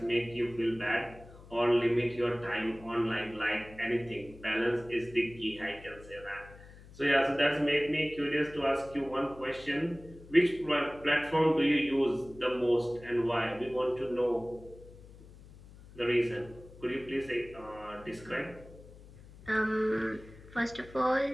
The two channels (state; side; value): noise; left; hum, 20 dB below the sound